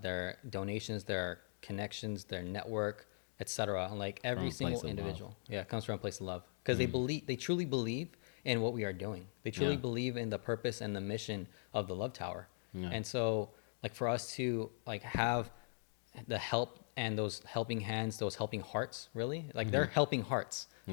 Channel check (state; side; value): silent; right; digital silence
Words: donations, their connections, their network, etc. Like every single individual, comes from a place of love, because they truly believe in what we are doing. They truly believe in the purpose and the mission of the Love Tower. And so, like, for us to like have the help and those helping hands, those helping hearts, really, like they're helping hearts,